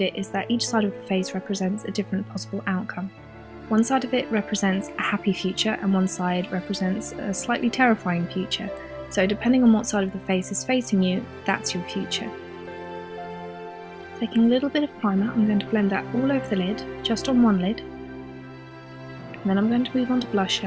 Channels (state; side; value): identical; both; correlation 1.00